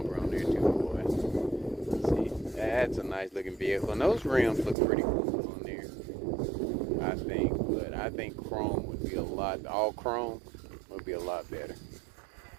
on there too, boy. See, That's a nice looking vehicle. And those rims look pretty cool on there, I think. But I think chrome would be all chrome would be a lot better.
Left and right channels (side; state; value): left; drops out; at 4.8 s